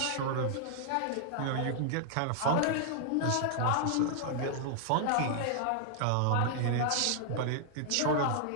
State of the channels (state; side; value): different; both; correlation -0.01